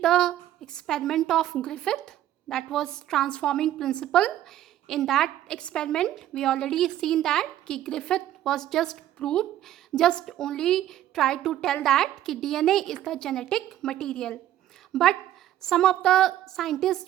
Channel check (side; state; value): left; quieter; 12.7 dB